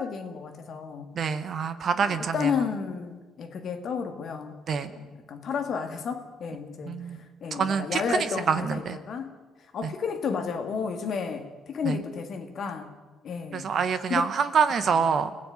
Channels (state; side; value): normal; both; correlation 0.70